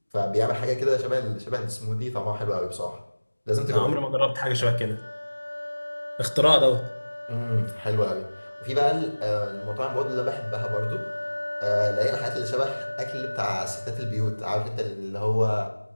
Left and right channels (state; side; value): inverted; both; correlation -1.00